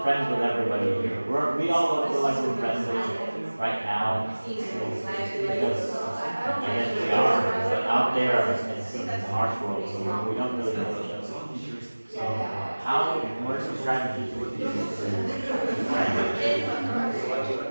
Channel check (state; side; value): inverted; both; correlation -1.00